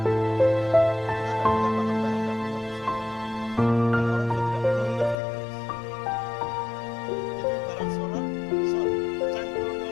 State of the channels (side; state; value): right; drops out; at 5.2 s